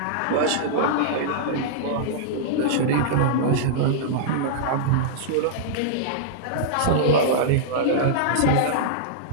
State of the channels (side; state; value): both; different; correlation -0.02